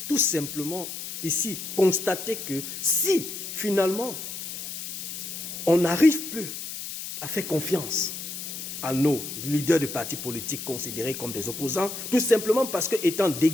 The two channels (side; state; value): left; noise; hiss, 8 dB below the sound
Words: tout simplement ici constater que si finalement on n'arrive plus à faire confiance à nos leaders de partis politiques considérés comme des opposants, tout simplement parce que étant